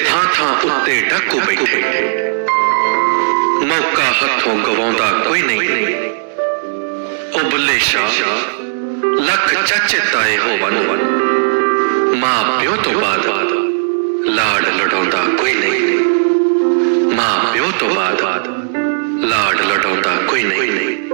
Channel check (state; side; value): silent; left; digital silence